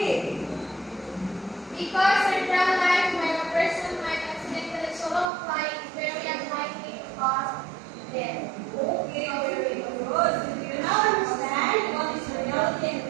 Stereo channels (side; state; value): left; drops out; at 5.2 s